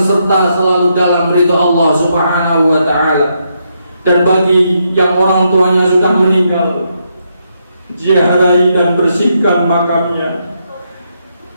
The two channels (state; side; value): inverted; both; correlation -0.79